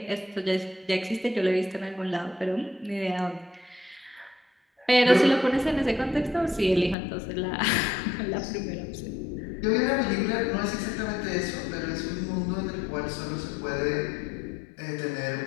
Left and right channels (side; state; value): right; drops out; at 7.0 s